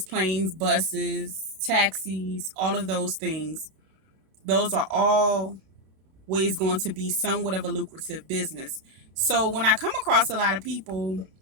planes, buses, taxis, all of those things, those are all ways going to be somewhat of a lucrative business. So when I come across a lot of people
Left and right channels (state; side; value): late; left; 32 ms